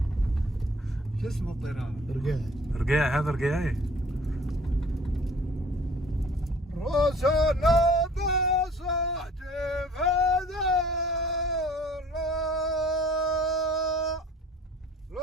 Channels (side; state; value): both; normal; correlation 0.51